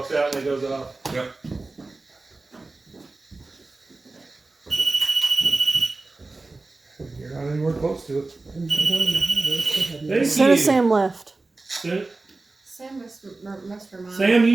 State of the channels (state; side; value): quieter; left; 3.4 dB